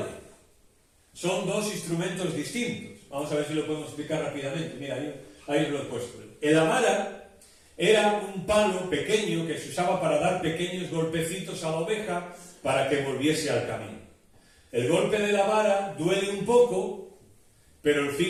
Son dos instrumentos distintos. Vamos a ver si lo podemos explicar rápidamente. Mira, ahí lo he puesto. La vara era un palo pequeño que se usaba para dar pequeños golpecitos a la oveja para que volviese al camino. El golpe de la vara duele un poco, pero el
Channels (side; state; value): both; identical; correlation 1.00